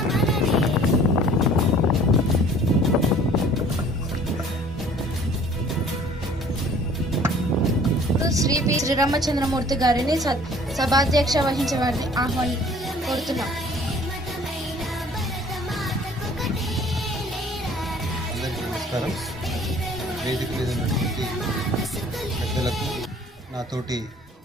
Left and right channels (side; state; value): both; normal; correlation 0.53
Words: శ్రీ పి శ్రీరామచంద్రమూర్తి గారిని సభాధ్యక్ష వహించే వారిని కోరుతున్నాం. అందరికీ నమస్కారం. వేదిక మీద ఉన్నటువంటి పెద్దలకు, నాతోటి